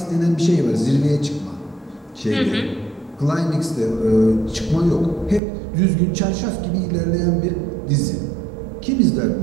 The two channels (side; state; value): left; drops out; at 5.4 s